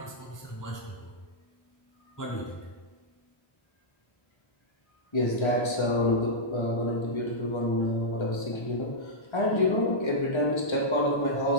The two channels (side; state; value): right; late; 1.3 ms